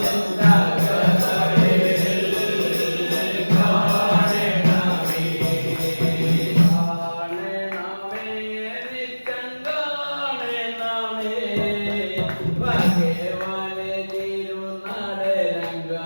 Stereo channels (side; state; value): both; inverted; correlation -1.00